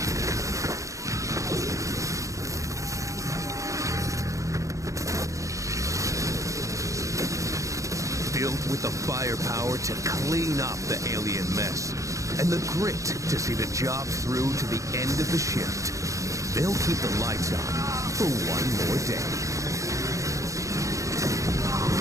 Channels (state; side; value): late; left; 0.15 ms